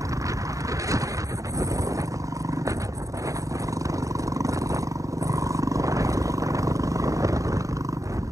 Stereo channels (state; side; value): late; left; 0.16 ms